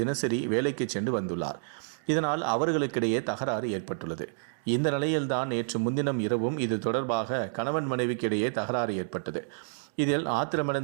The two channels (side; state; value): left; silent; digital silence